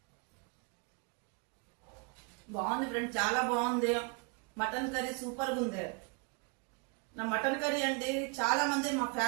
బాగుంది ఫ్రెండ్, చాలా బాగుంది. మటన్ కర్రీ సూపర్ గా ఉంది. నా మటన్ కర్రీ అండి చాలా మంది మా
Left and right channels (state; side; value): quieter; left; 34.2 dB